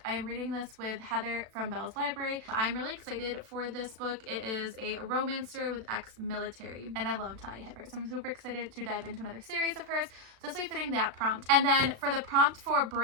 I am reading this with Heather from Bell's Library. I'm really excited for this book. It is a romance story with ex-military, and I love Talia Hibbert, so I'm super excited to dive into another series of hers. So this will be fitting that prompt. And then for the prompt for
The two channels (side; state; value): left; late; 36 ms